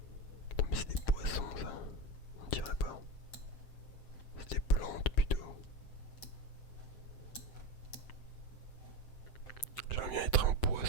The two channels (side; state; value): right; late; 7.7 ms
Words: Attends, mais c'est des poissons ça. On dirait pas. C'est des plantes plutôt. J'aimerais bien être un